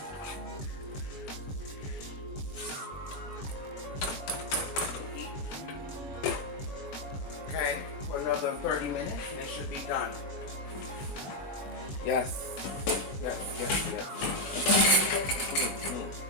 Okay, for another 30 minutes and it should be done. Yes. Yes.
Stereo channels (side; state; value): right; late; 21 ms